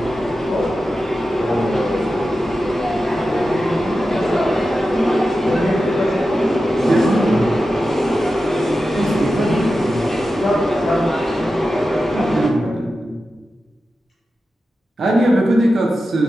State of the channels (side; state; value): both; normal; correlation 0.92